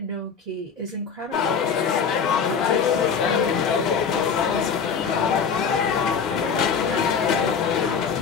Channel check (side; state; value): right; quieter; 6.2 dB